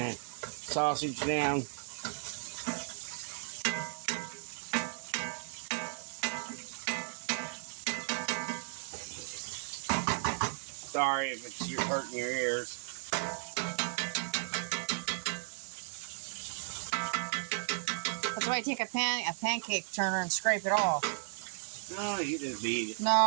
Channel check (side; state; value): left; silent; 54 dB below the other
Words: sausage down. Sorry if it's hurting your ears. That's why you take a pancake turner and scrape it off. No, you just beat it.